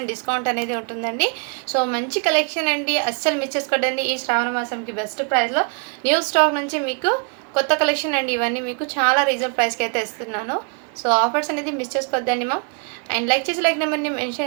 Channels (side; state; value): left; quieter; 40.0 dB